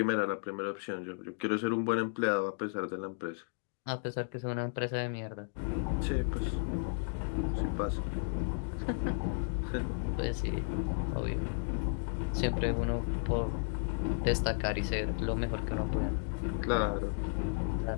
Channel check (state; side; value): silent; right; digital silence